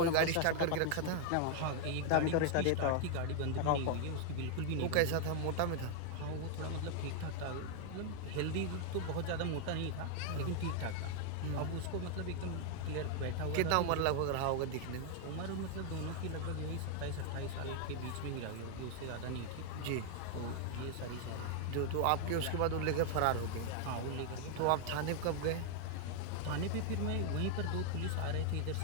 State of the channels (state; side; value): different; both; correlation 0.00